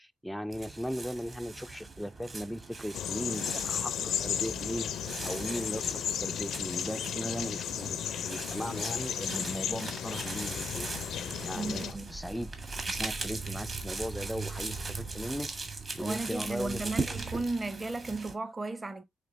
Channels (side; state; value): both; normal; correlation 0.81